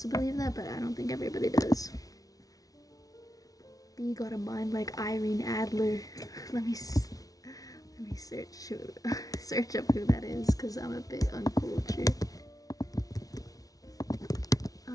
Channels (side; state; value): right; late; 0.18 ms